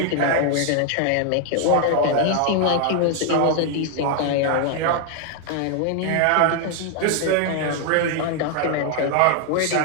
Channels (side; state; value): both; different; correlation 0.00